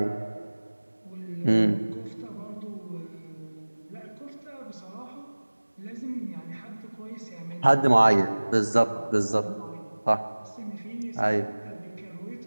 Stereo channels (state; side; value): inverted; both; correlation -1.00